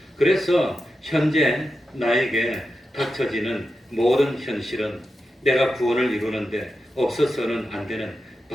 그래서 현재 나에게 닥쳐지는 모든 현실은 내가 구원을 이루는데 없어서는 안 되는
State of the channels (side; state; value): both; normal; correlation 0.90